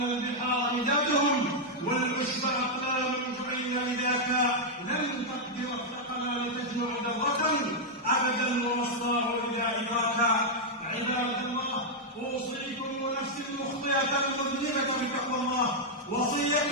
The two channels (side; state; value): both; normal; correlation -0.03